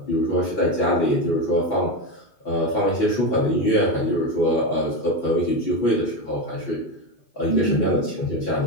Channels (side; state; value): right; late; 2.5 ms